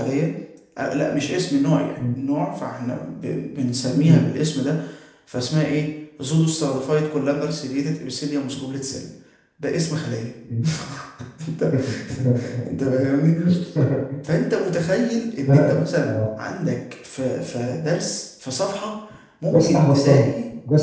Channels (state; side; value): identical; both; correlation 1.00